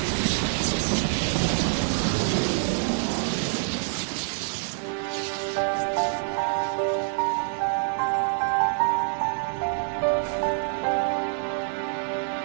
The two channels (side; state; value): left; silent; digital silence